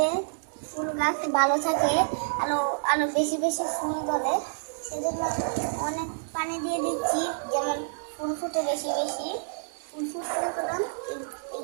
ফুল গাছ ভালো থাকে, আরো আরো বেশি বেশি ফুল ধরে। সেজন্য অনেক পানি দিয়ে দিচ্ছি, যেমন ফুল ফুটে বেশি বেশি। ফুল ফুটলে করলাম এই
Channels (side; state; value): left; silent; digital silence